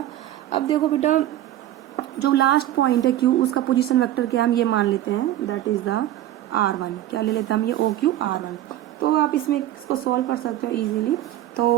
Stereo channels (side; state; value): left; quieter; 13.4 dB